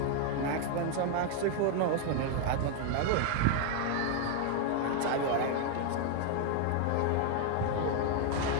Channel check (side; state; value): both; different; correlation 0.01